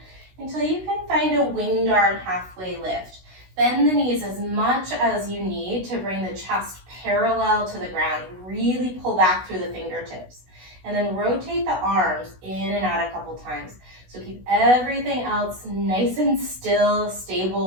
until you can find a winged arm halfway lift. Bend the knees as much as you need to bring the chest parallel to the ground. Really pull back through the fingertips. And then rotate the arms in and out a couple times. So keep everything else nice and still,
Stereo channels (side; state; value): left; late; 16 ms